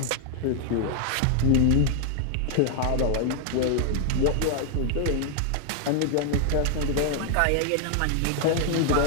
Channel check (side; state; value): both; different; correlation 0.00